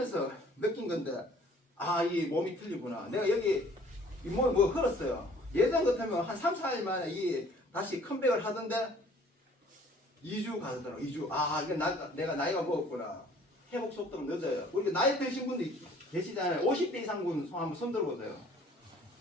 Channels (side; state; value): both; normal; correlation 0.55